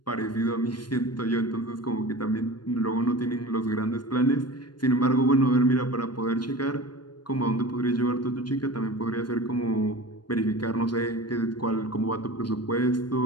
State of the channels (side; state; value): right; late; 0.71 ms